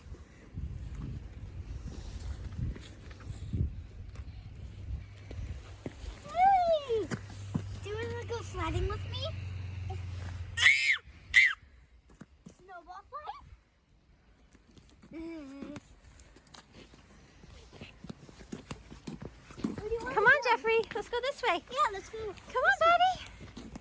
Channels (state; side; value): identical; both; correlation 1.00